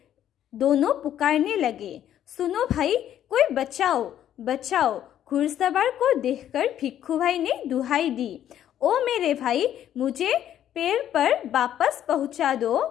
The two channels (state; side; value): quieter; right; 10.9 dB